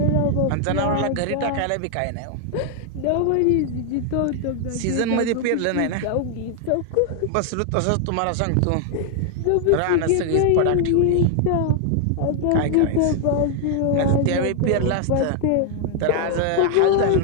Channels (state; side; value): different; both; correlation 0.00